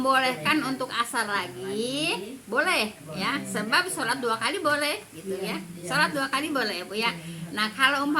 untuk asar lagi, boleh ya. Sebab sholat 2 kali boleh gitu ya. Sholat 2 kali boleh Bu ya. Nah, kalau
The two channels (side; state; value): both; identical; correlation 1.00